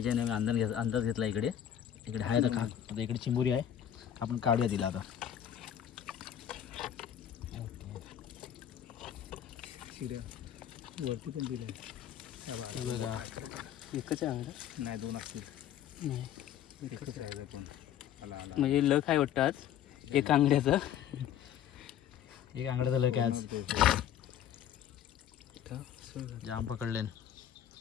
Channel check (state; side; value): quieter; right; 10.1 dB